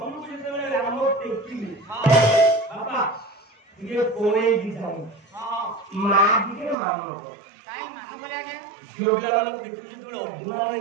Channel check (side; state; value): left; drops out; at 6.8 s